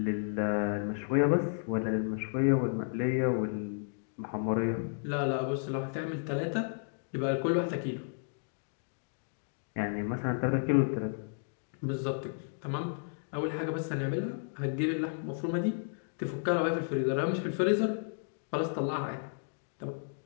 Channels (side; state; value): right; silent; digital silence